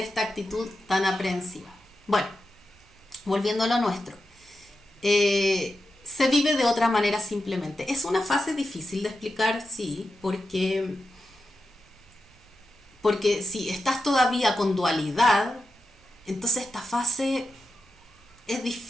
actitud tan aprehensiva. Bueno, volviendo a lo nuestro. Se vive de otra manera simplemente. Es una fase difícil de explicar, sí, porque si estás todavía con dualidad, entonces esta fase es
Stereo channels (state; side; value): normal; both; correlation 0.89